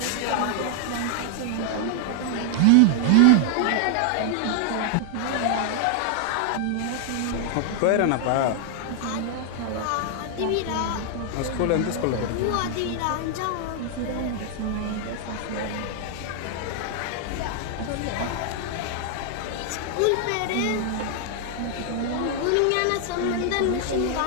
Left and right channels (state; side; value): different; both; correlation 0.00